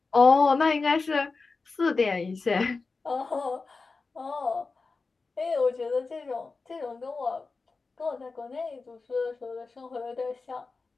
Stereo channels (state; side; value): quieter; right; 4.1 dB